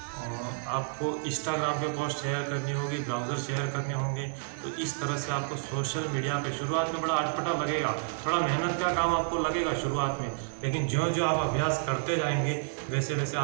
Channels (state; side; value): silent; left; digital silence